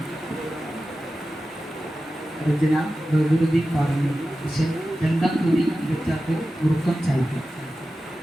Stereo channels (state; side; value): normal; both; correlation 0.93